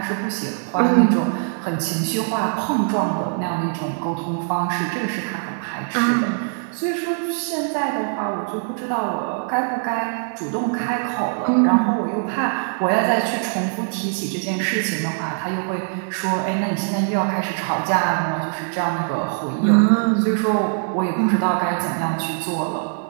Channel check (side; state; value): left; silent; 59 dB below the other